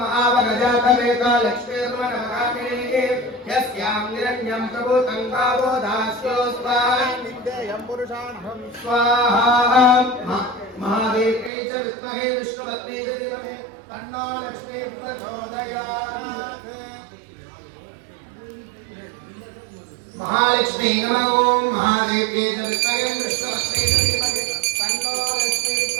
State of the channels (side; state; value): left; drops out; at 11.5 s